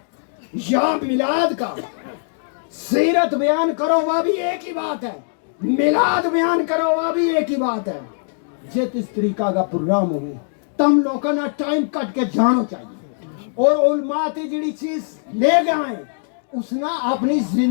या मिलाद का, सीरत बयान करो वह भी एक ही बात है, मिलाद बयान करो वह भी एक ही बात है। जिस इस तरीका का प्रोग्राम होगी तम लोगों ना टाइम कट के जानो चाहिए, और उलमा ते जड़ी चीज ले गए उसना अपनी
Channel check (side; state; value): right; silent; digital silence